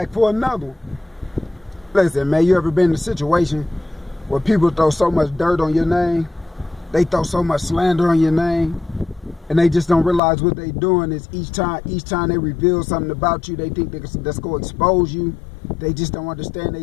for another one. Listen, man, you ever been in a situation where people throw so much dirt on your name? They throw so much slander on your name, and they just don't realize what they doing is each time they reveal something about you, they think that's going to expose you. They just don't understand.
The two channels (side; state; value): right; drops out; at 10.2 s